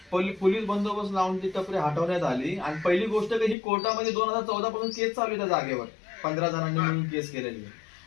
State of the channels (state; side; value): drops out; right; at 3.6 s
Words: लावून ती टपरी हटवण्यात आली। आणि पहिली गोष्ट की ही कोर्टामध्ये 2014 पासून केस चालू आहे त्या जागेवर 15 जणांनी मिळून केस केलेली आहे।